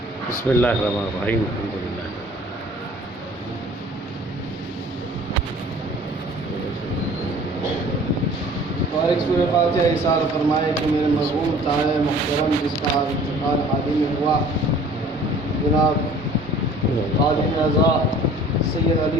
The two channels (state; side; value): normal; both; correlation 0.50